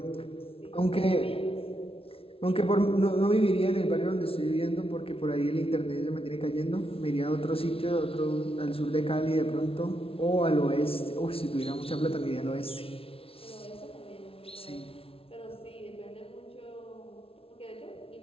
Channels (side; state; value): right; late; 0.27 ms